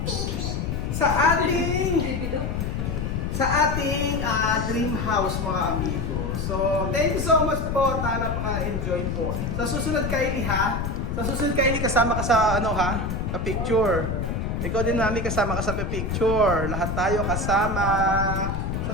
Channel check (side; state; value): left; noise; rumble, 2 dB below the sound